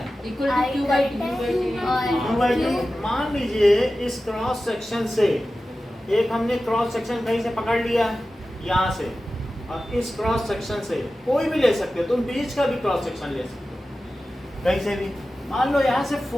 Equal to Q by Q by T. Q by T। मान लीजिए इस क्रॉस सेक्शन से एक हमने क्रॉस सेक्शन कहीं से पकड़ लिया यहाँ से, और इस क्रॉस सेक्शन से कोई भी ले सकते हो, तुम बीच का भी क्रॉस सेक्शन ले सकते हो कहीं से भी। मान लो यहाँ से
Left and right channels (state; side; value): normal; both; correlation 0.94